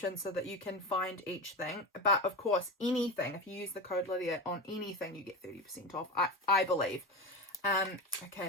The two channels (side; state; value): both; normal; correlation 0.22